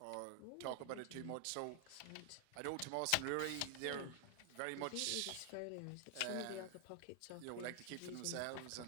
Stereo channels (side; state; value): both; different; correlation 0.00